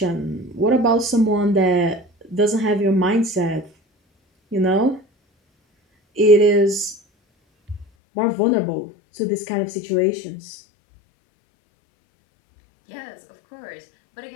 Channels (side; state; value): right; drops out; at 7.9 s